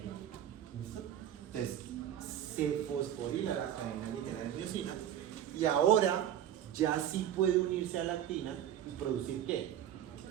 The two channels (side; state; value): left; quieter; 10.7 dB